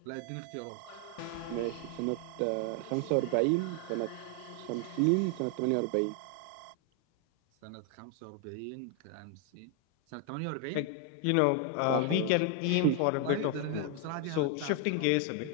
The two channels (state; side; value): different; both; correlation 0.01